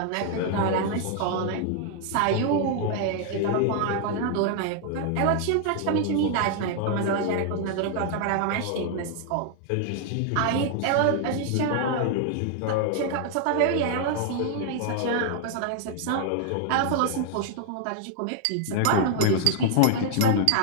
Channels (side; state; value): both; different; correlation 0.00